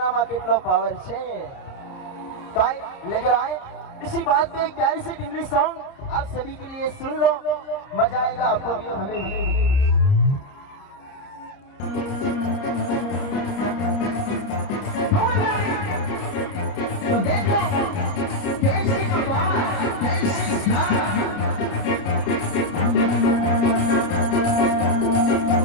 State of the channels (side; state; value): right; late; 30 ms